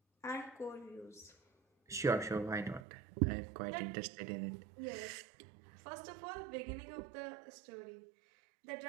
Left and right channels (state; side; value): drops out; left; at 2.8 s